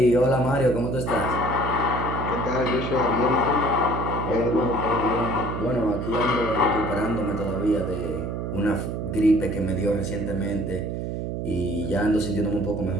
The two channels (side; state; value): right; noise; hum, 3 dB below the sound